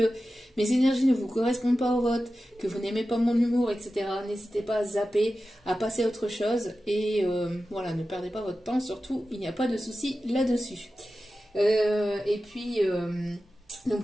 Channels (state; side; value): normal; both; correlation 0.93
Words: mes énergies ne vous correspondent pas au vote, que vous n'aimez pas mon humour, etc., n'hésitez pas à zapper, à passer à autre chose. Et voilà, ne perdez pas votre temps, surtout, il n'y a pas de souci là-dessus. Et puis...